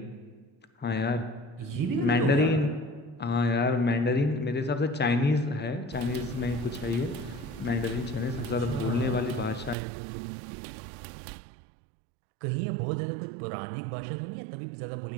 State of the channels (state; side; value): drops out; left; at 9.8 s